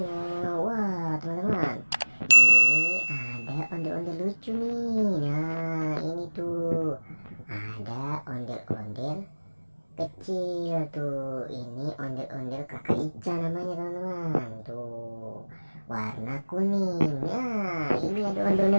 Wah teman-teman, ini ada ondel-ondel lucu nih. Nah ini tuh ada ondel-ondel kecil tuh. Ini ondel-ondel kakak Ica namanya teman-teman. Tuh warna kuning. Nah ini ada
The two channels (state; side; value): inverted; both; correlation -1.00